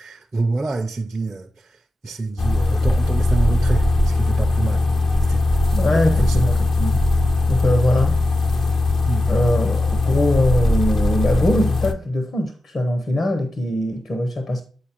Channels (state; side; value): normal; both; correlation 0.92